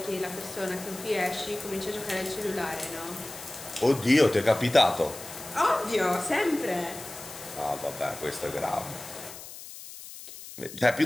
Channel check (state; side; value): noise; left; hiss, 13 dB below the sound